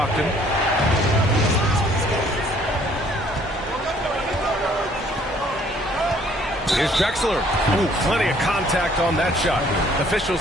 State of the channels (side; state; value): both; normal; correlation 0.60